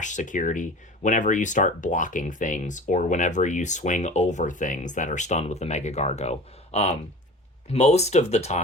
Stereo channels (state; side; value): normal; both; correlation 0.39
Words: security whenever you start blocking things or whenever you swing over things that are stunned with the Mega Gargo. Most of the